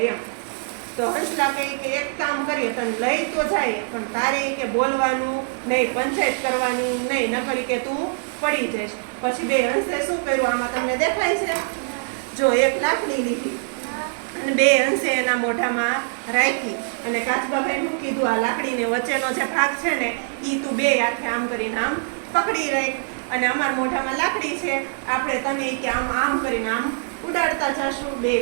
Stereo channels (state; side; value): silent; left; 63 dB below the other